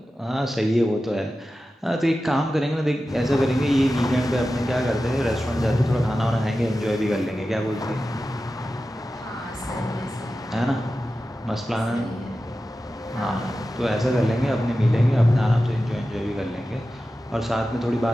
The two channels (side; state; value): both; normal; correlation 0.93